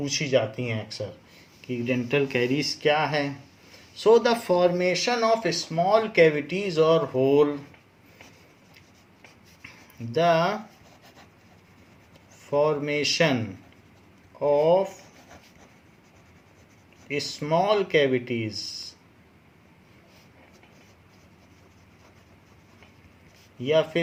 जाती हैं अक्सर कि डेंटल कैरीज क्या है. So the formation of small cavities और hole, the formation of small cavities या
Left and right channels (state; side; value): identical; both; correlation 1.00